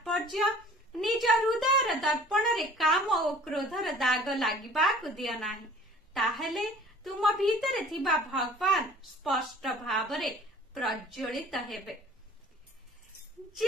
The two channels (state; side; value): normal; both; correlation 0.49